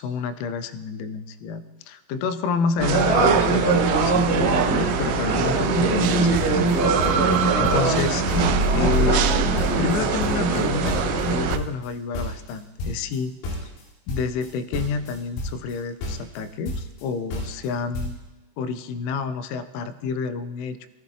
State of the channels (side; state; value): right; late; 23 ms